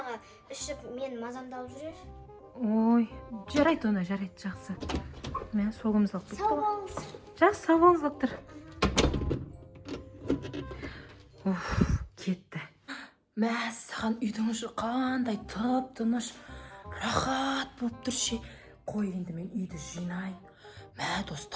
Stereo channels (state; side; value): identical; both; correlation 1.00